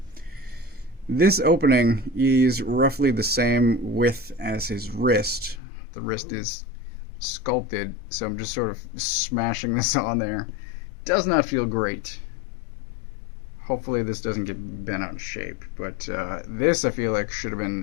this opening is roughly the same width as his wrist. The wrist is sculpted, so I'm just sort of smashing this on there. Does not feel great. Hopefully this doesn't get bent out of shape, but this I feel like should have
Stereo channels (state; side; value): drops out; right; at 5.6 s